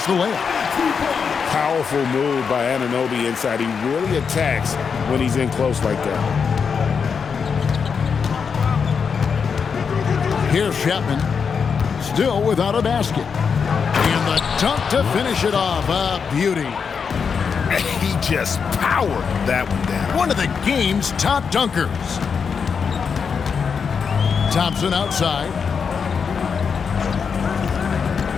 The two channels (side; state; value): right; quieter; 6.1 dB